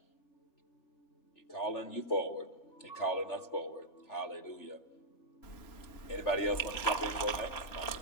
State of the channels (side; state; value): right; late; 3.0 ms